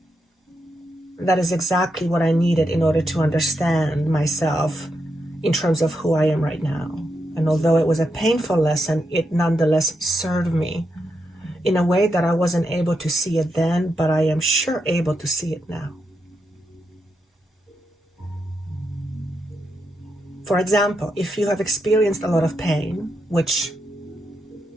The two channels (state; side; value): normal; both; correlation 0.84